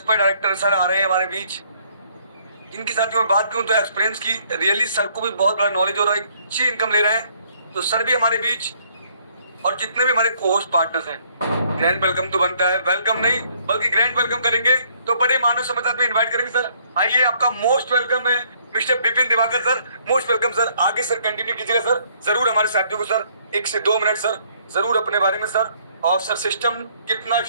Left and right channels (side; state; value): both; inverted; correlation -0.65